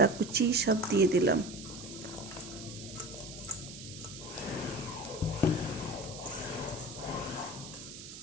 কুচি সব দিয়ে দিলাম।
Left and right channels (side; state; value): right; noise; hiss, 13 dB below the sound